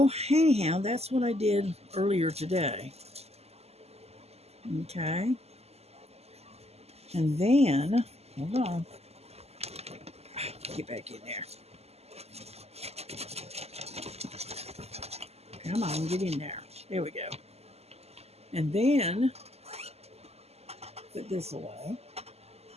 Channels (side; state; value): left; late; 0.30 ms